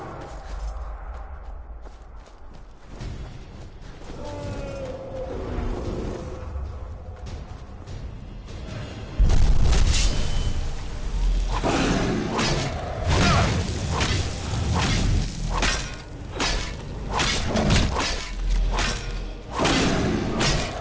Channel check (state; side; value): identical; both; correlation 1.00